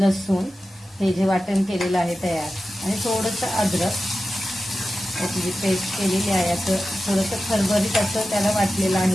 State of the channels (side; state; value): both; normal; correlation 0.93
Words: हे जे वाटण केलेलं आहे तयार आणि थोडंसं अद्रक याची जी पेस्ट केलेली आहे असं थोडंसं खरबरीत असं त्याला वाटलेलं